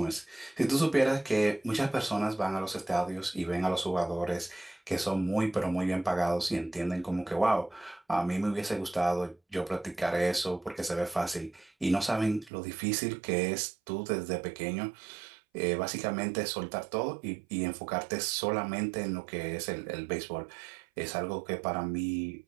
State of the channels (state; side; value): drops out; left; at 12.5 s